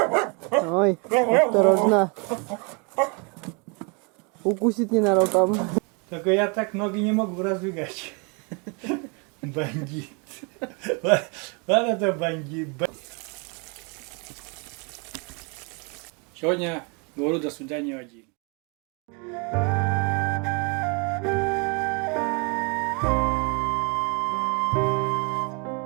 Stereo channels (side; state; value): left; quieter; 33.3 dB